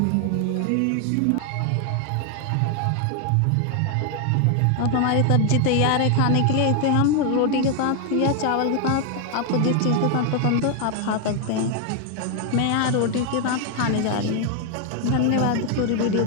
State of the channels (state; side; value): different; both; correlation 0.00